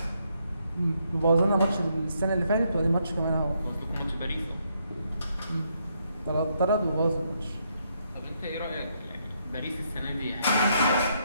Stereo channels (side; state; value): both; inverted; correlation -0.76